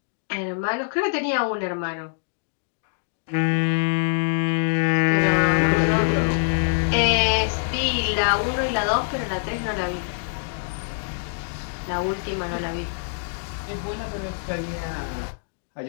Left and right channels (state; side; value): silent; right; digital silence